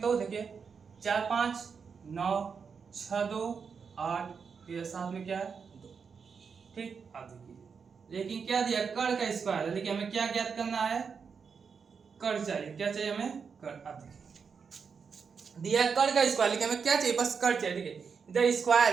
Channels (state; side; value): quieter; left; 5.9 dB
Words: देखिए 4 5 9 6 2 8, फिर साथ में क्या है, 2। ठीक, आप देखिए, लेकिन क्या दिया, कण का स्क्वायर है, लेकिन हमें क्या ज्ञात करना है, कण चाहिए। क्या चाहिए हमें, कण। आप देखिए दिया है कण का स्क्वायर, लेकिन हमें क्या चाहिए, बस कण चाहिए। देखिए इधर